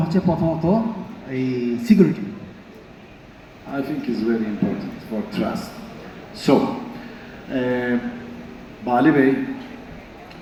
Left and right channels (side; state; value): both; identical; correlation 1.00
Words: হচ্ছে প্রথমত এই security. I think is very important for trust. So, Bali Bey,